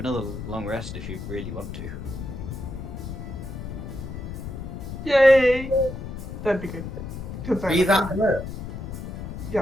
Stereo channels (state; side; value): noise; left; rumble, 7 dB below the sound